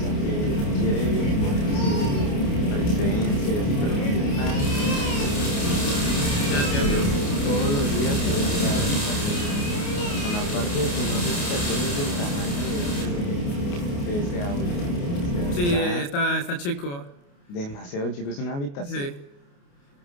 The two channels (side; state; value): right; late; 29 ms